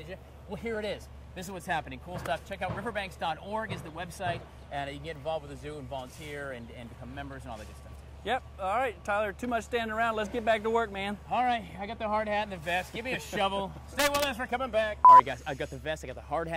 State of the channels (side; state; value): both; identical; correlation 1.00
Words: you? Well, here it is. This is what's happening. Cool stuff. Check out riverbanks.org is the website, and you can get involved with the zoo and volunteer and become members and all that good stuff. Yep. All right, Tyler, too much standing around. Let's get back to work, man. All right, I got the hard hat and the vest. Give me a shovel. Stay with us. We're coming back. All right, guys, I got the vest. I got the hard